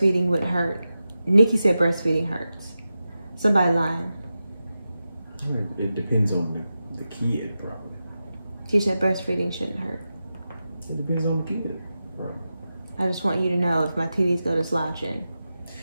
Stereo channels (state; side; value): inverted; both; correlation -0.92